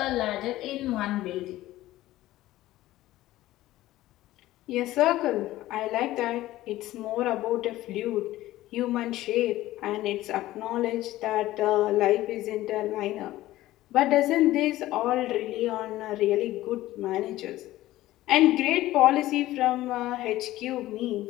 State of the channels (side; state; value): right; quieter; 15.9 dB